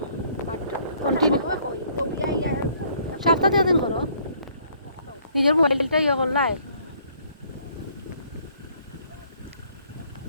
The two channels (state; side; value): inverted; both; correlation -0.62